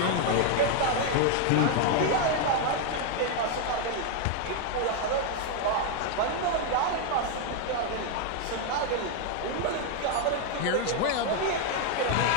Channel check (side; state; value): both; different; correlation 0.01